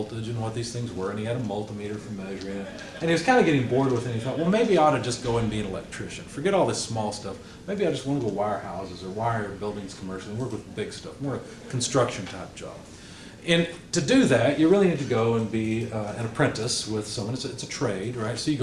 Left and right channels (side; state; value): both; identical; correlation 1.00